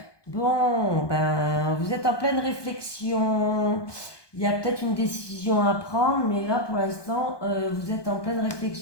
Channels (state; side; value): late; right; 1.2 ms